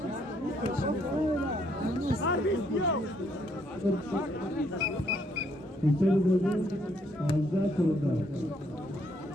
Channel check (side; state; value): both; normal; correlation 0.70